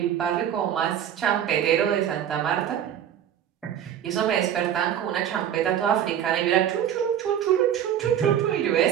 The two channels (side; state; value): left; quieter; 9.9 dB